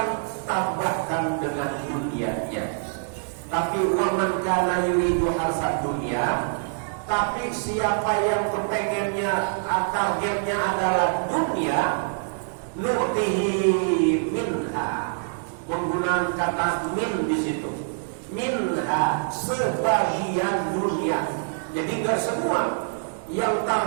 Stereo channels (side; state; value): left; silent; digital silence